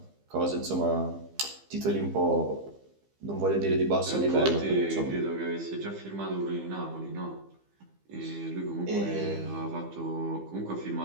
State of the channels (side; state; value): left; late; 15 ms